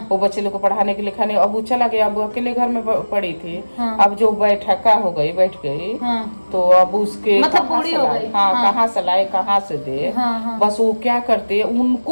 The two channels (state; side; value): inverted; both; correlation -1.00